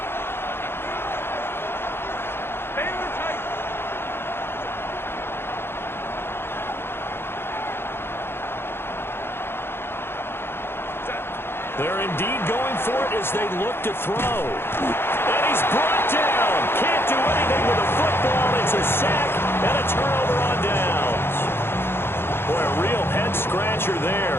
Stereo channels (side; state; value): right; late; 0.11 ms